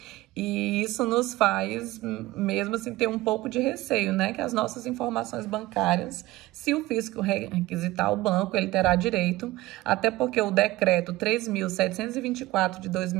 e isso nos faz, mesmo assim, ter um pouco de receio, né? Que as nossas informações bancárias, se o fisco requisitar o banco, ele terá direito, até porque o decreto 3.724 de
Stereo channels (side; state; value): left; quieter; 18.2 dB